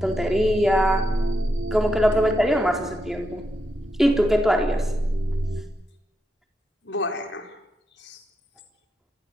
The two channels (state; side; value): normal; both; correlation 0.84